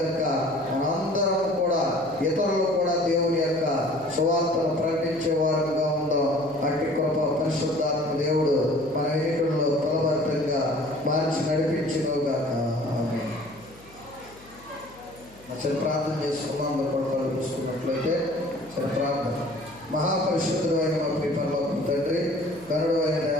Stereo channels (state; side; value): noise; left; hum, 24 dB below the sound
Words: మనందరం కూడా ఇతరులు కూడా దేవుని యొక్క సువార్తను ప్రకటించే వారుగా ఉందాం. అట్టి కృప పరిశుద్ధాత్మ దేవుడు మన ఎన్నికల్లో ఫలభరితంగా మార్చి నడిపించునుగా. సరే, ప్రార్థన చేసుకున్నాం. అందరూ కూడా చూసుకున్నట్లయితే సరే ప్రార్థన. మహాపరిశుద్ధుడు అయిన మా పరలోక తండ్రి, కరుడు అయిన